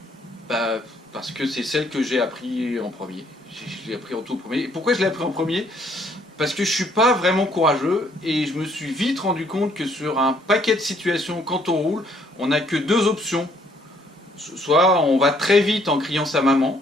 Parce que c'est celle que j'ai appris en premier. Je l'ai appris en tout premier. Et pourquoi je l'ai appris en premier? Parce que je suis pas vraiment courageux et je me suis vite rendu compte que sur un paquet de situations, quand on roule, on n'a que deux options. Soit on va très vite en criant sa maman,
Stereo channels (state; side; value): normal; both; correlation 0.66